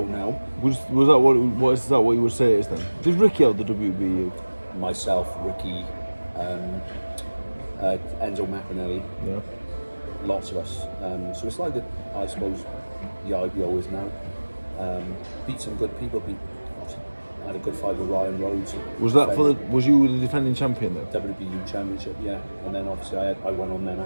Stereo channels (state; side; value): inverted; both; correlation -1.00